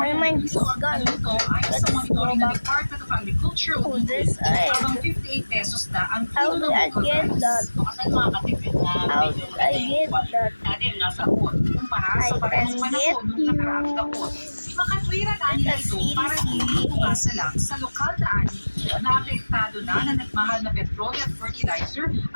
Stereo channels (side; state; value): both; inverted; correlation -1.00